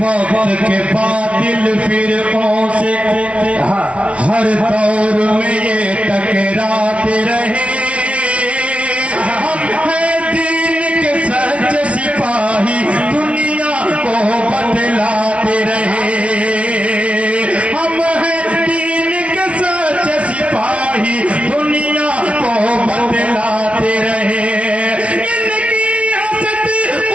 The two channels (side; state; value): left; late; 0.062 ms